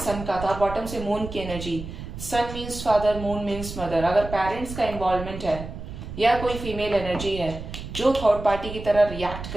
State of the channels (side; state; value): right; noise; rumble, 10 dB below the sound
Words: का था, बॉटम से मून की energy. Sun means father, moon means mother. अगर पेरेंट्स का इन्वॉल्वमेंट है, या कोई फीमेल एनर्जी है जो थर्ड पार्टी की तरह रिएक्ट